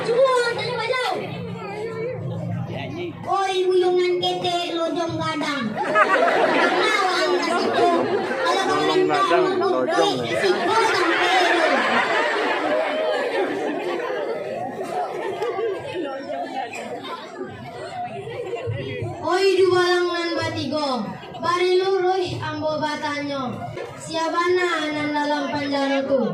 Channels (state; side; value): identical; both; correlation 1.00